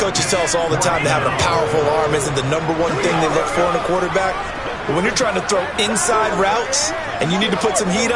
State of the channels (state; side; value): identical; both; correlation 1.00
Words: tell us all the time that having a powerful arm isn't the #1 thing they look for in a quarterback. But when you're trying to throw inside routes and you need to put some heat